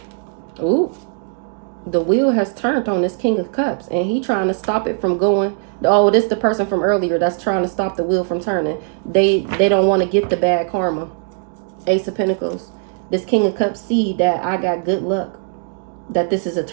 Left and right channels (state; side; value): silent; left; digital silence